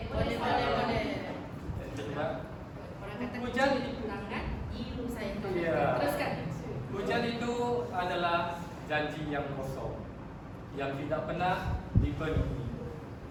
Boleh. Coba. Orang kata Hujan tangan, ilu saya. Iya. Teruskan. Hujan itu adalah janji yang kosong, yang tidak pernah dipenuhi.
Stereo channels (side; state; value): both; identical; correlation 1.00